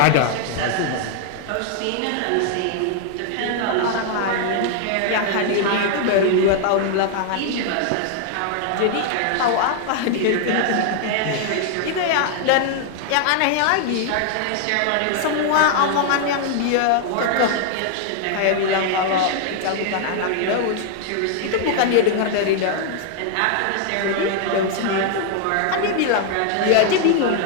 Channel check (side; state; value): both; different; correlation 0.00